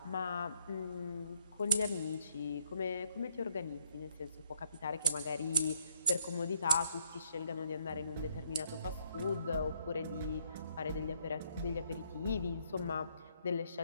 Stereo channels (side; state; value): both; inverted; correlation -0.71